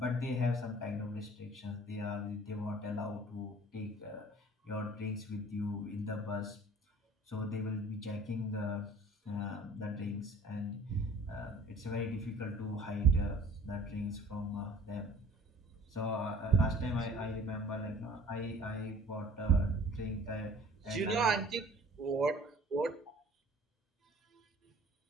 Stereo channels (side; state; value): both; normal; correlation 0.49